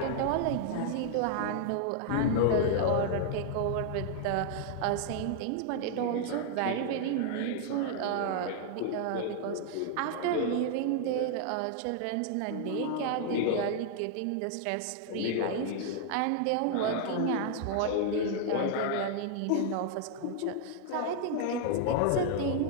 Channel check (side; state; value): both; different; correlation -0.01